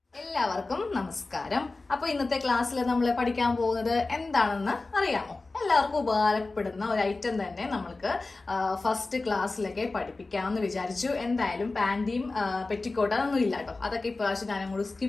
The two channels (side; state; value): right; quieter; 3.4 dB